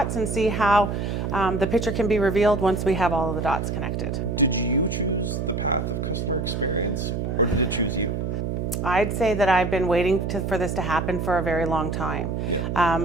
and see how the picture can be revealed once we have all of the dots connected. Did you choose the path of customer experience, or did it choose you? I'd say that I've been waiting for this to happen for a very long time.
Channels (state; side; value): noise; right; hum, 2 dB below the sound